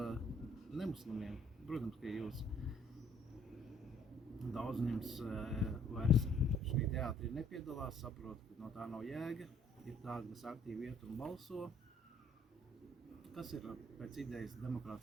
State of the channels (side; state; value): both; normal; correlation 0.61